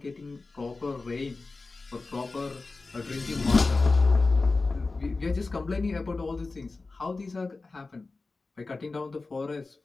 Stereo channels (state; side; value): quieter; right; 3.7 dB